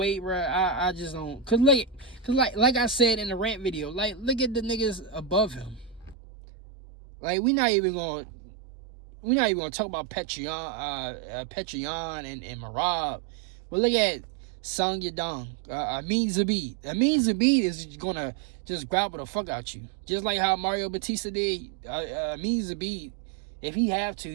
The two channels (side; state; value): left; drops out; at 6.2 s